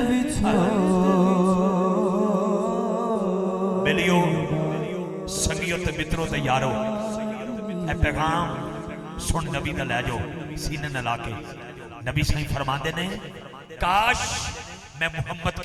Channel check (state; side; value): identical; both; correlation 1.00